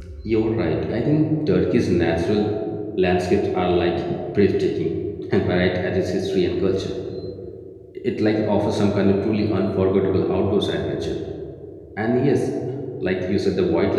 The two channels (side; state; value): both; identical; correlation 1.00